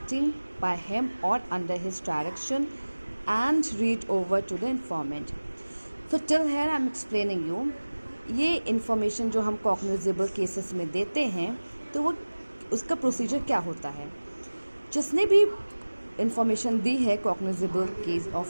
by him or under his direction and read over to the informant. So till here I am explaining you, ये information जो हम cognizable cases में देते हैं तो वो उसका procedure क्या होता है. जिसने भी information दी है cognizable case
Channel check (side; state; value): both; inverted; correlation -1.00